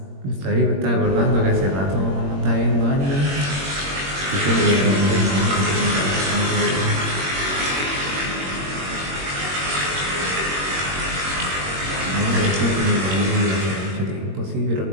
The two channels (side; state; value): left; late; 21 ms